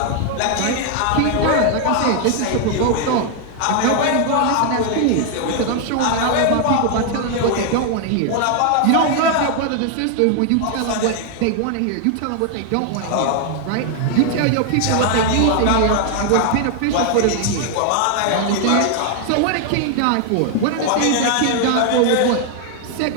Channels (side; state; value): both; different; correlation 0.00